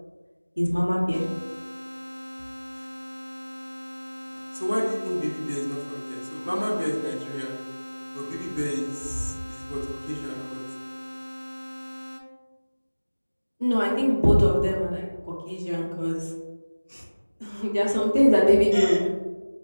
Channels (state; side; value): inverted; both; correlation -1.00